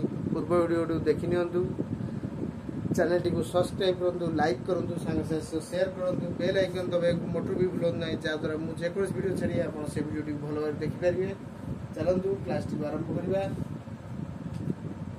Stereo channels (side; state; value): both; identical; correlation 1.00